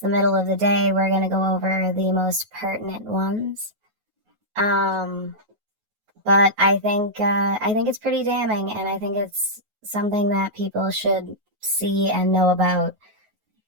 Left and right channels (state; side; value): late; left; 9.4 ms